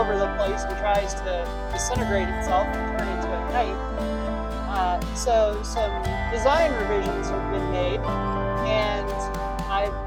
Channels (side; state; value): both; identical; correlation 1.00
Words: the place and tries to disintegrate itself and turn into a kite. So some design revisions have been made, and I've